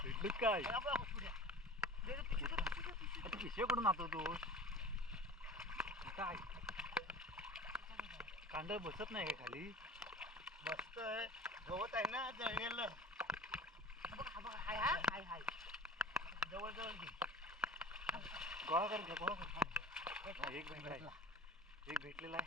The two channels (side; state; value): both; normal; correlation 0.37